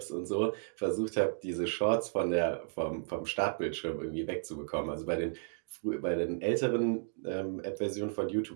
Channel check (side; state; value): left; silent; digital silence